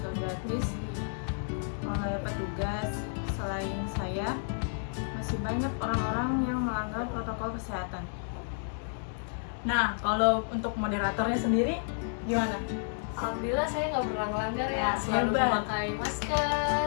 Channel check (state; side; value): silent; right; digital silence